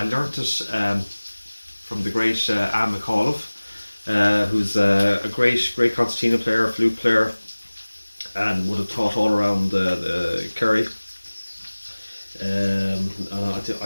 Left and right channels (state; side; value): inverted; both; correlation -1.00